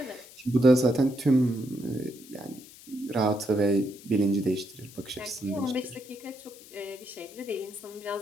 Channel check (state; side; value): noise; left; hiss, 20 dB below the sound